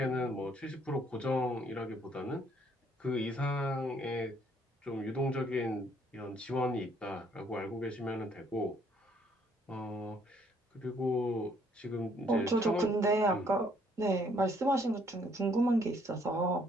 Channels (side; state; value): both; normal; correlation 0.65